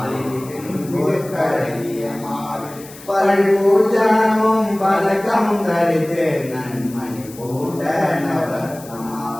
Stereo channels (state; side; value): noise; left; hiss, 19 dB below the sound